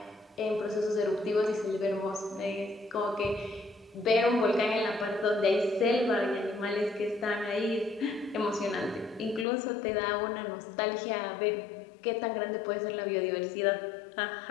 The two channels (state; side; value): drops out; right; at 9.5 s